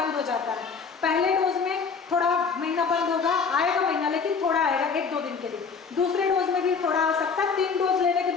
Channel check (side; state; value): right; quieter; 5.5 dB